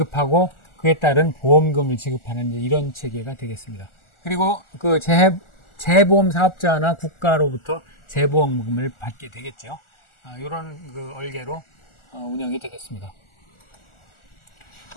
그에 따른 보험금을 지급하는 이런 체계가 되겠습니다. 그리고 그 재보험 사업자나 국가로부터 재보험금을 받게 되겠죠. 이런 그 얼개로 운영이 되겠습니다.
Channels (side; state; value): right; late; 1.4 ms